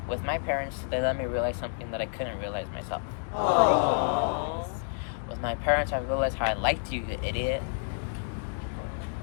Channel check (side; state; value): right; silent; digital silence